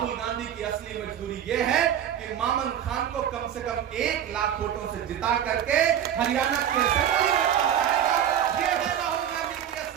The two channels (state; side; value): quieter; left; 9.9 dB